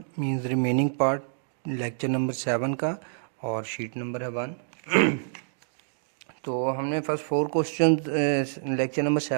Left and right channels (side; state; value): left; silent; digital silence